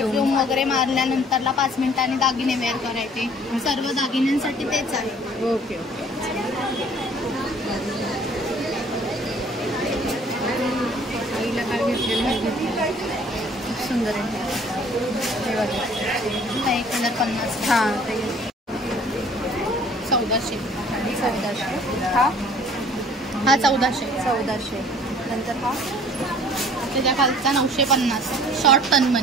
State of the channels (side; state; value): both; normal; correlation 0.53